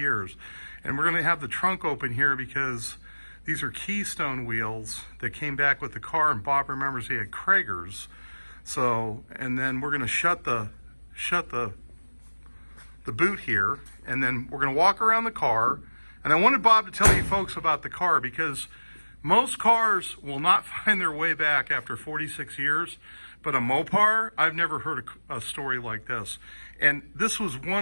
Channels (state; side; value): inverted; both; correlation -1.00